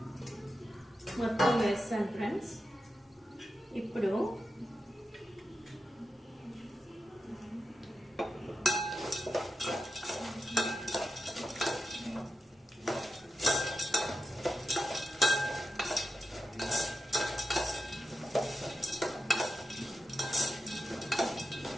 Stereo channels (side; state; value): both; normal; correlation 0.90